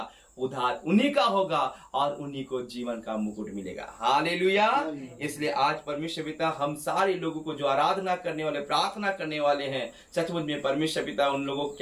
उद्धार उन्हीं का होगा और उन्हीं को जीवन का मुकुट मिलेगा। हालेलुया। इसलिए आज परमेश्वर पिता हम सारे लोगों को जो आराधना करने वाले, प्रार्थना करने वाले हैं, सचमुच में परमेश्वर पिता उन लोगों को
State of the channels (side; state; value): both; identical; correlation 1.00